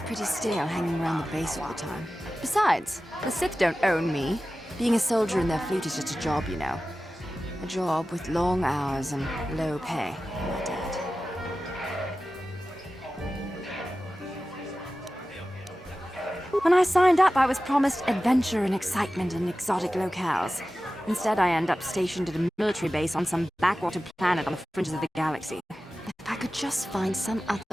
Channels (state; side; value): normal; both; correlation 0.95